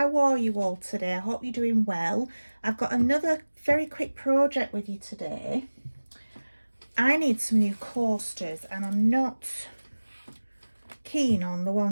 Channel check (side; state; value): both; inverted; correlation -1.00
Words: are you all today? I hope you're doing well. I've got another very quick project with you today. I need some new coasters and I'm not keen on the